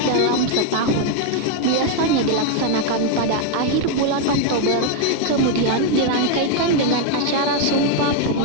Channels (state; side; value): different; both; correlation 0.01